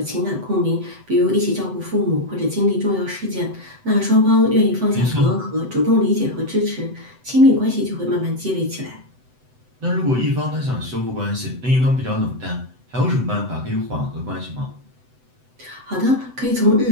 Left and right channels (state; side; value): late; left; 7.9 ms